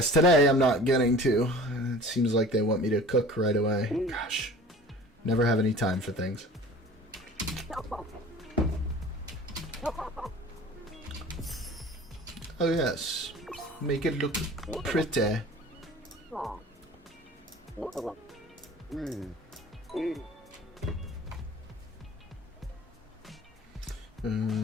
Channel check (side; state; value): both; normal; correlation 0.43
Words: today I'm not getting to. It seems like they want me to cook right away. Gosh. Never have any time for things. Oh yes. Make it look pretty.